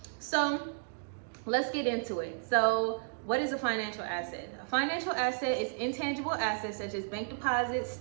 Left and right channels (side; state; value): left; silent; digital silence